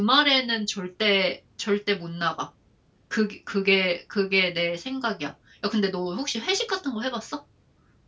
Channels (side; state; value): both; identical; correlation 1.00